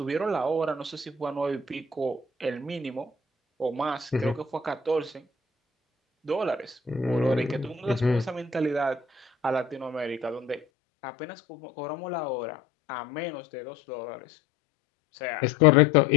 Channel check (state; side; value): drops out; right; at 10.7 s